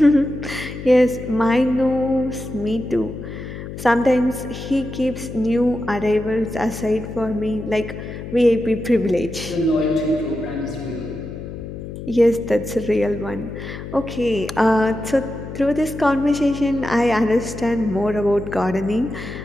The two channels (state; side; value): noise; left; hum, 10 dB below the sound